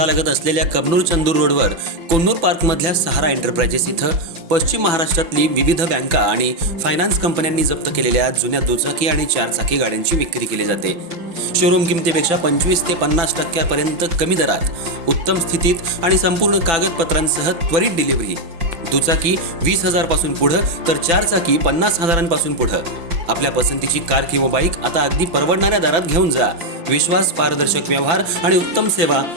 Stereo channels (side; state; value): left; late; 6.0 ms